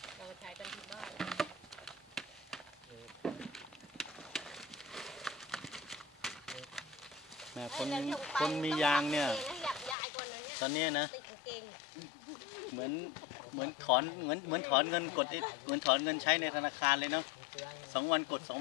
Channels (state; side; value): drops out; right; at 10.0 s